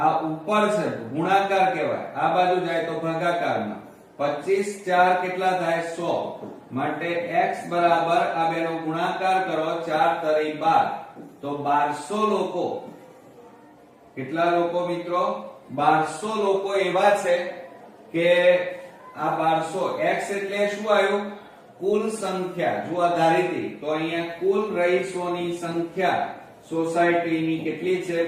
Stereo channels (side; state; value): both; identical; correlation 1.00